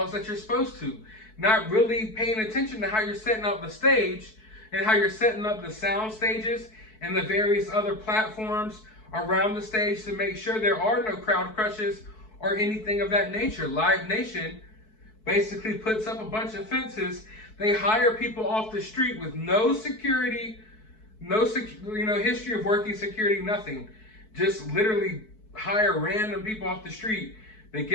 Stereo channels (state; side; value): late; right; 4.6 ms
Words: that you're supposed to. Not really paying attention to how you're setting up the stage and how you're setting up the sound stages and the various other platforms around the stage to make sure there are no crowd crushes or anything of that nature. Live Nation basically puts up a bunch of fences. They hire people off the street with no security, history of working security, nothing. Just literally hire random people off the street. They